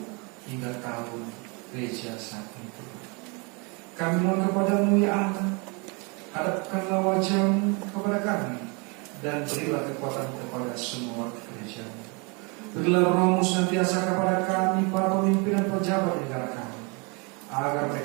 hingga tahun gereja saat itu. Kami mohon kepada-Mu ya Allah, hadapkanlah wajah-Mu kepada kami, dan berilah kekuatan kepada semua gereja-Mu. Berilah Roh-Mu senantiasa kepada kami, para pemimpin dan pejabat negara kami, agar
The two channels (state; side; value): quieter; left; 31.4 dB